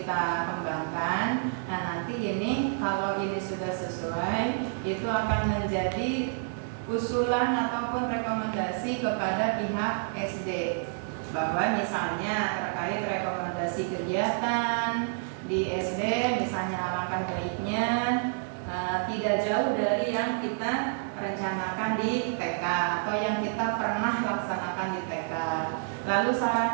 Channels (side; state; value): left; silent; digital silence